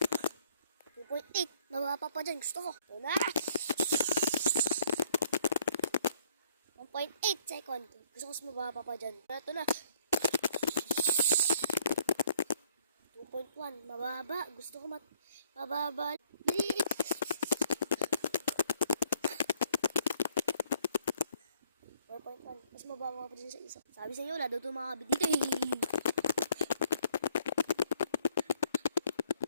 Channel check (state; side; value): inverted; both; correlation -0.64